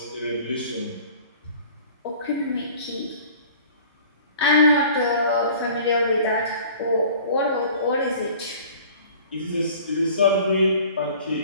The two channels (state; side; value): inverted; both; correlation -0.48